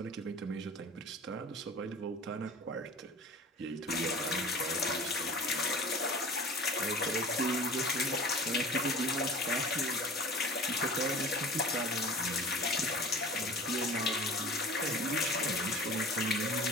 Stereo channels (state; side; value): normal; both; correlation 0.40